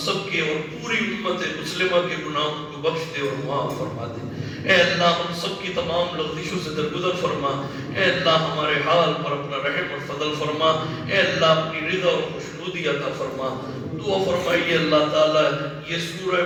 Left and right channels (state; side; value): identical; both; correlation 1.00